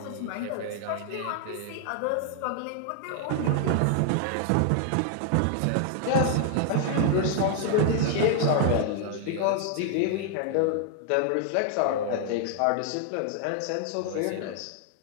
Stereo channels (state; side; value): different; both; correlation 0.00